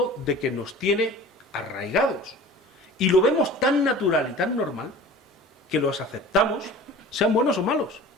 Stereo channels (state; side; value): normal; both; correlation 0.41